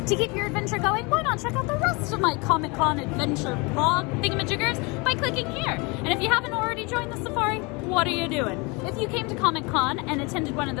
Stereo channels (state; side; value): quieter; right; 28.0 dB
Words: To keep your adventure going, why not check out the rest of my Comic Con adventure vlog thingamajiggers by clicking here. And if you haven't already joined the safari, what are you doing? If you came to Comic Con and attended one of